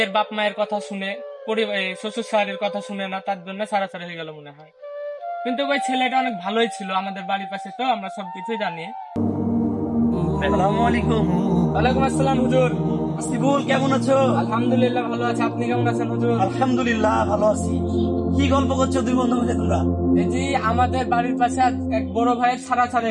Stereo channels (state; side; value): identical; both; correlation 1.00